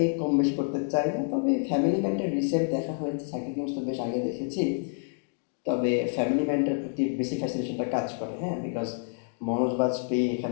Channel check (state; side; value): silent; right; 59 dB below the other